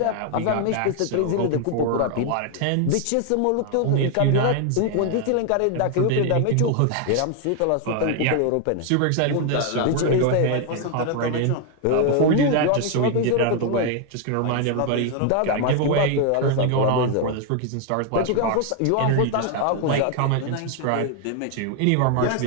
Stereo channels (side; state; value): both; different; correlation 0.00